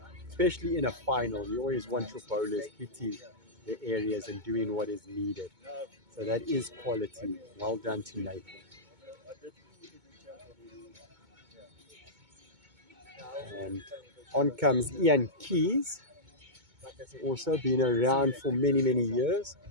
Especially in a final, you always want your bowlers hitting the areas and doing what is needed. So that is quality. Well done to Nathan. And on comes Ian Keys. Also been around for many, many years.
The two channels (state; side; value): late; left; 2.2 ms